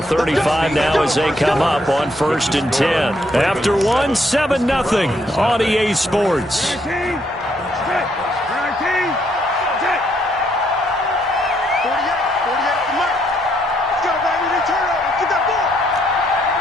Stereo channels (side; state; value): both; normal; correlation 0.72